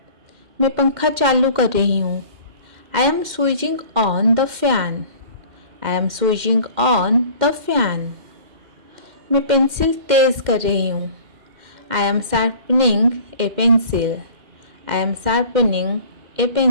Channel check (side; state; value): left; late; 2.1 ms